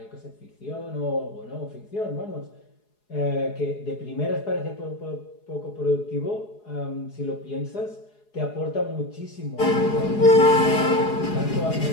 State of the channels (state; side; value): late; right; 4.8 ms